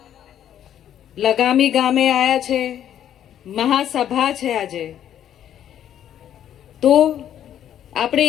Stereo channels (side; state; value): right; quieter; 10.5 dB